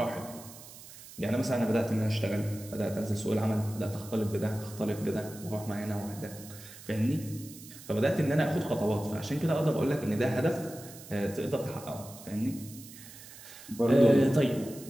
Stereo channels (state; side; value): noise; right; hiss, 17 dB below the sound